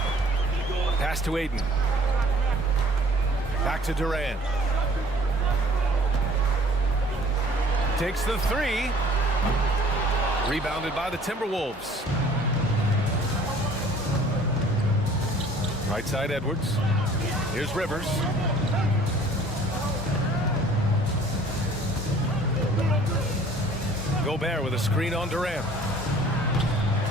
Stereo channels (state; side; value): normal; both; correlation 0.53